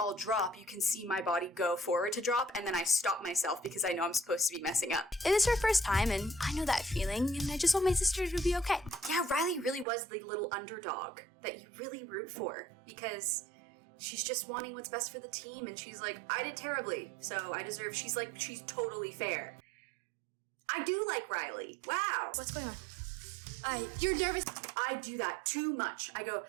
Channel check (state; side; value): drops out; left; at 9.9 s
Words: drop, you can see my body go forward to drop, and then I stop myself because I know I'm supposed to be messing up. It is her first time, and I know that feeling, and I just want my sister to be okay. Yeah, Riley really was the little underdog that you really root for because she's just wanting what's best for the team, and she's like, I did terribly, so I deserve. She's totally fair. I do like Riley. Wow. What's going on? You're nervous. I do that too much.